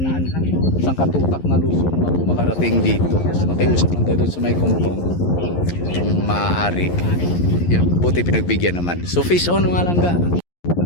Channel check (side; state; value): right; late; 11 ms